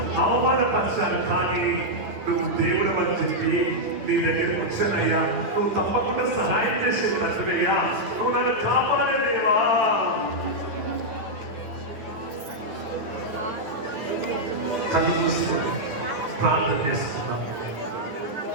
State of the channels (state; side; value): late; left; 9.5 ms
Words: అవమానపరిచారు. కానీ నువ్వు దేవుడు అని చెప్పి నీ దగ్గరికి వచ్చానయ్యా. నువ్వు తప్పకుండా సహాయం చేసే తండ్రివయ్యా. నువ్వు నన్ను కాపాడలేవా? కళ్ళు మూసుకొని ప్రార్థన చేస్తున్నాను.